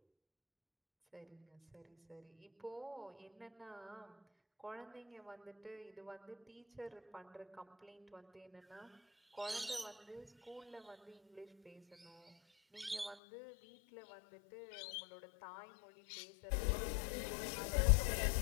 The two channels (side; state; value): right; drops out; at 13.2 s